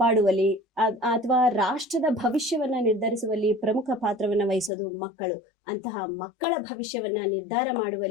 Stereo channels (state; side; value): drops out; right; at 4.7 s